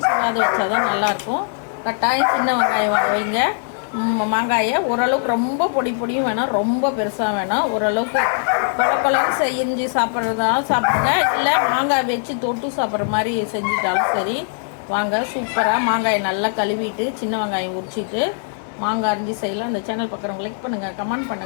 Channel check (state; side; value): silent; right; 65 dB below the other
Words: சீவாத வச்சா தான் நல்லாயிருக்கும். கட்டாயம் சின்ன வெங்காயம் வைங்க. மாங்காயை ஓரளவுக்கு ரொம்ப பொடியும் வேணாம், ரொம்ப பெருசாக வேணாம். ஓரளவுக்கு கொலன்னு செஞ்சு சாப்பிட்றதாலும் சாப்பிடுங்க, இல்லை மாங்காய் வச்சு தொட்டு சாப்பிட்ற மாதிரி செஞ்சுட்டாலும் சரி. வாங்க, சூப்பராக மாங்காயை நல்லா கழுவிட்டு சின்ன வெங்காயம் உரிச்சிட்டு மாங்காய் அரிஞ்சு செய்யலாம். அந்த சேனல் பார்க்குறவங்க லைக் பண்ணுங்கள், கமெண்ட்